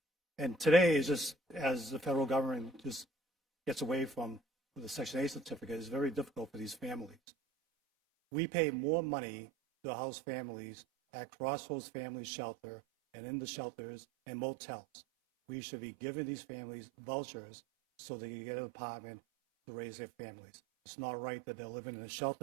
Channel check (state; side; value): drops out; left; at 7.2 s